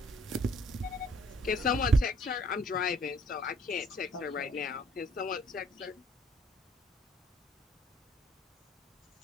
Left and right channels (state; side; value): normal; both; correlation 0.59